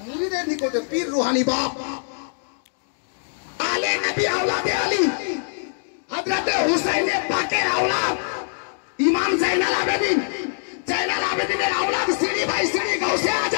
মুরিদের নিকটে পীর রুহানি বাপ। আলে নবী আওলাদে আলী, হযরতে হুসাইনে পাকের আওলাদ ইমাম জাইনাল আবেদিন, জাইনাল আবেদিনের আওলাদ সিঁড়ি বাই সিঁড়ি গাউসে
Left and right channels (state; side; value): silent; right; digital silence